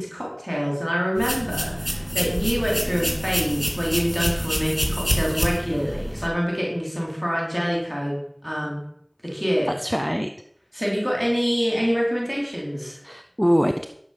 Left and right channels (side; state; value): both; identical; correlation 1.00